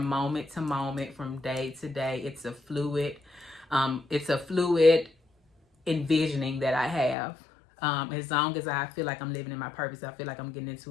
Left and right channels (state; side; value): drops out; right; at 7.2 s